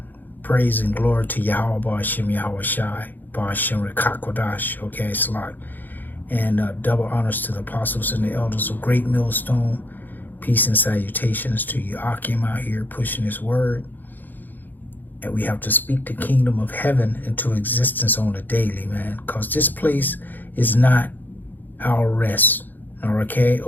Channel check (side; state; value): right; late; 0.087 ms